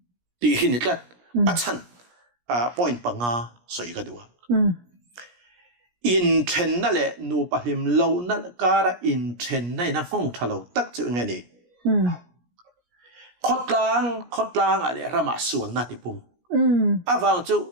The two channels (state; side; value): late; left; 17 ms